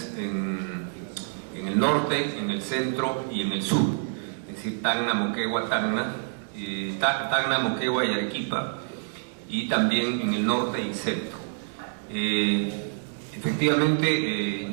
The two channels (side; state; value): left; silent; digital silence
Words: en el norte, en el centro y en el sur, es decir, Tacna, Moquegua, Tacna, Moquegua y Arequipa, y también en el norte y centro. Efectivamente,